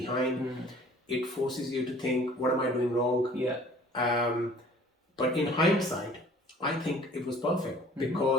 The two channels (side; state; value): both; normal; correlation 0.51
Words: It forces you to think, what am I doing wrong? Yeah. But in hindsight, I think it was perfect